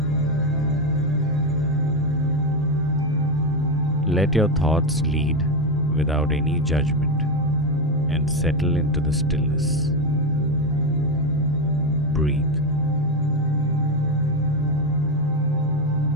Let your thoughts lead without any judgment and settle into the stillness. Breathe.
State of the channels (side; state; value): both; normal; correlation 0.10